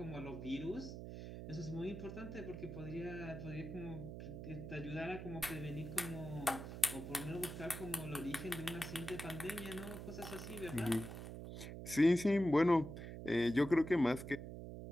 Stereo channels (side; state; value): right; noise; hum, 8 dB below the sound